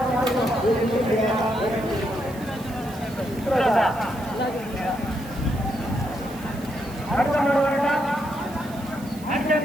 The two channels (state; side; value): noise; right; hiss, 20 dB below the sound